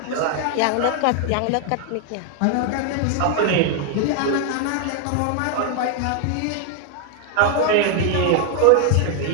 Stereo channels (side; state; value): both; different; correlation 0.00